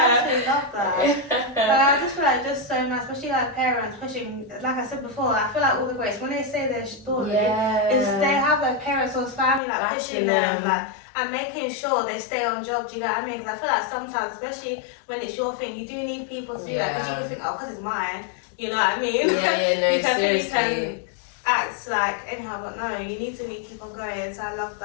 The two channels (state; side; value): drops out; right; at 9.6 s